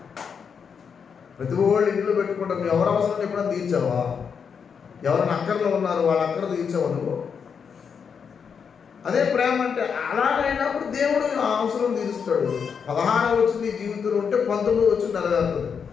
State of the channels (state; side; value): quieter; right; 6.5 dB